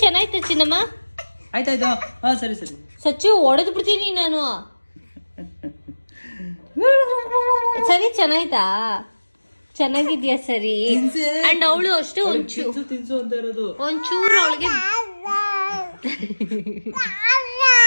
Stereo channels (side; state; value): both; inverted; correlation -1.00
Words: ಚೆನ್ನಾಯ್ತು ಚಿನ್ನಮ್ಮ. ಆಯ್ತಾಯ್ತು. ಹಾಂ ಸರಿ. ಸಚ್ಚು ಹೊಡೆದು ಬಿಡ್ತೀನಿ ನಾನು. ಸರಿ ಚೆನ್ನಾಯ್ತಾ? ಚೆನ್ನಾಗಿದ್ಯಾ? ಸರಿ. ಅಂಡ್ ಅವಳು ಅಷ್ಟು ಒಂಚೂರು